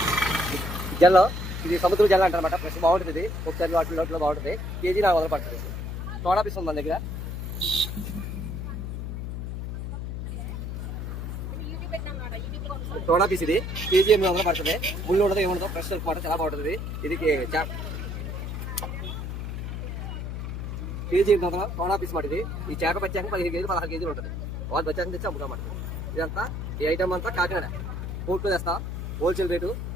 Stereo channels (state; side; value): noise; left; hum, 5 dB below the sound